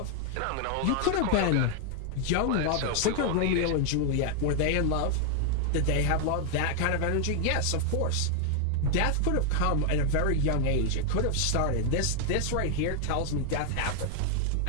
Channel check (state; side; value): different; both; correlation 0.00